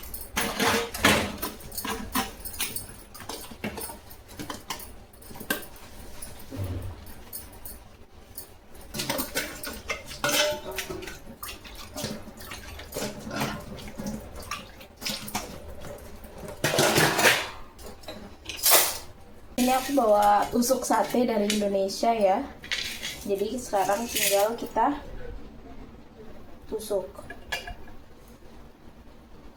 Ini aku bawa tusuk sate dari Indonesia ya. Jadi sekarang tinggal kita tusuk.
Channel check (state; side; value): identical; both; correlation 1.00